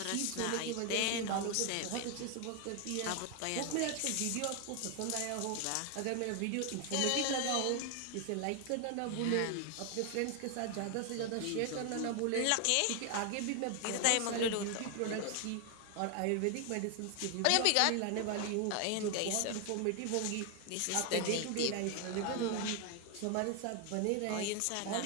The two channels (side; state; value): both; different; correlation 0.01